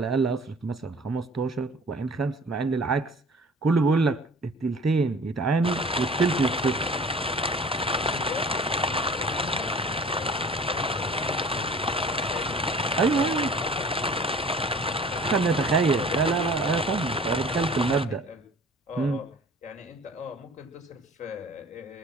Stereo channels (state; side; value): normal; both; correlation 0.46